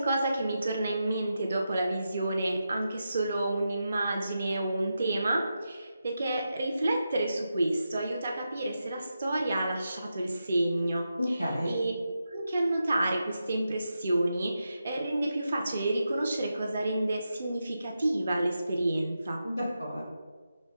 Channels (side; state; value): both; inverted; correlation -0.88